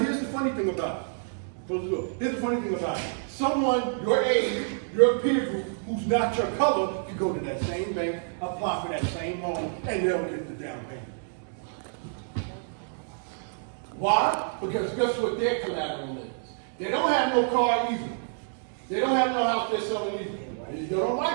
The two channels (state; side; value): silent; left; digital silence